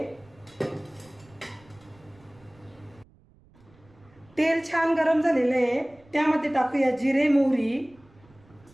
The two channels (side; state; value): right; noise; rumble, 28 dB below the sound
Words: तेल छान गरम झालेलं आहे, त्यामध्ये टाकूया जिरे, मोहरी,